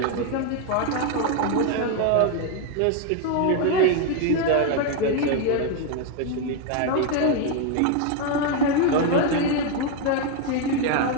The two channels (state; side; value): different; both; correlation 0.01